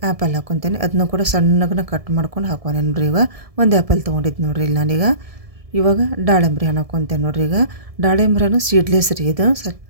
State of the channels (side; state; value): left; late; 1.7 ms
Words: ಆ್ಯಪಲ್ ಹಾಕ್ಕೊತೇನೆ. ಅದನ್ನು ಕೂಡ ಸಣ್ಣಗನ ಕಟ್ ಮಾಡ್ಕೊಂಡು ಹಾಕೋನೆ ನೋಡಿರಿ. ಈಗ 1 ಆ್ಯಪಲ್ ತೊಗೊಂಡಿದ್ದು ನೋಡಿರಿ ಇಲ್ಲಿ ನಾನೀಗ. ಇವಾಗ ದಾಳಿಂಬ್ರಿ ಹಣ್ಣು ಹಾಕ್ಕೊತೇನೆ ನೋಡಿರಿ. ಈಗ ದಾಳಿಂಬ್ರಿ ಹಣ್ಣು ಸೀಡ್ಲೆಸ್ ರೀ ಇದು.